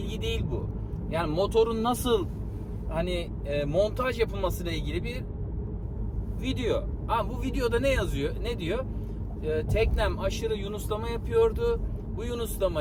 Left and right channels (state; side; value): identical; both; correlation 1.00